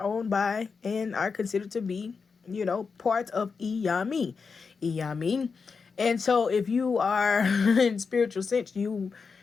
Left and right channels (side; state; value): right; quieter; 5.2 dB